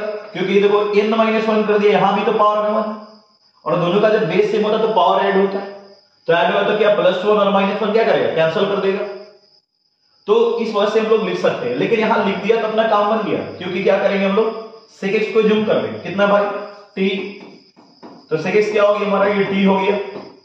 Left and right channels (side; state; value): both; identical; correlation 1.00